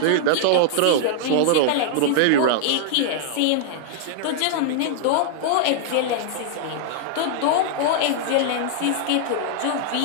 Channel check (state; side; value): different; both; correlation -0.01